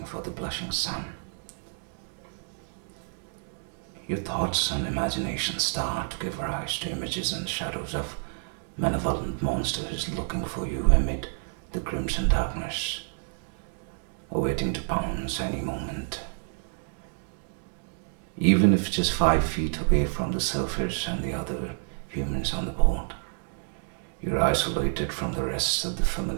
for the blushing sun. Your thoughts and imagination start to give rise to images and shadows of malevolent monsters looking for you amid the crimson darkness, awaiting to pounce any moment. Even if just 5 feet away from the surface and the other humans on the boat, you're isolated from the rest of the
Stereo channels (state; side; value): silent; left; 59 dB below the other